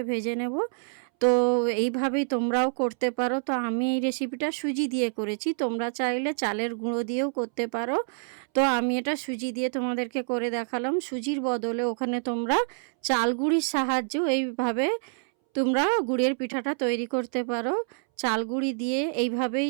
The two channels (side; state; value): left; silent; 60 dB below the other